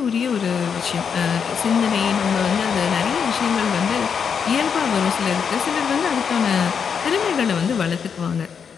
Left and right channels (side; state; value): right; quieter; 6.8 dB